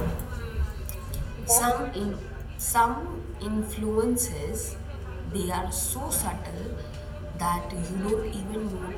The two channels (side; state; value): both; identical; correlation 1.00